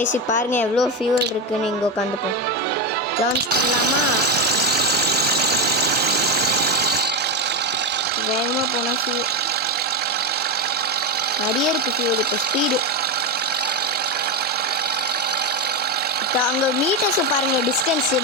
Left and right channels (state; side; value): normal; both; correlation 0.12